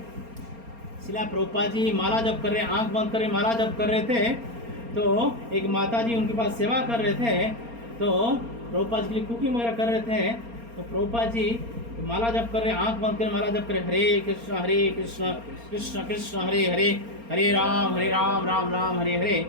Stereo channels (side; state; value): left; late; 4.3 ms